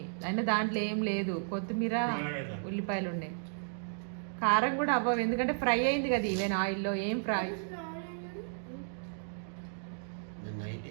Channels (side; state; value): left; silent; digital silence